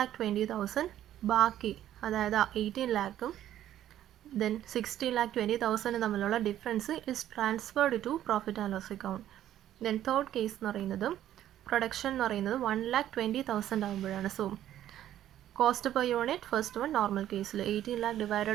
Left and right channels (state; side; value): quieter; left; 12.0 dB